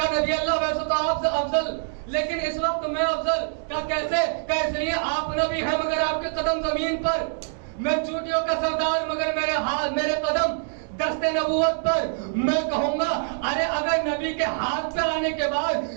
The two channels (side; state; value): left; silent; digital silence